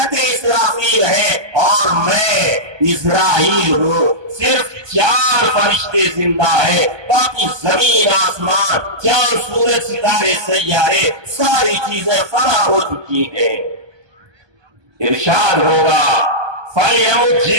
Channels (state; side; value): late; left; 1.2 ms